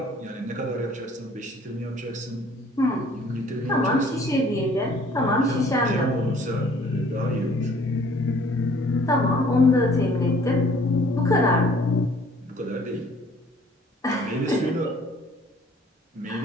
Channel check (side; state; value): both; normal; correlation 0.56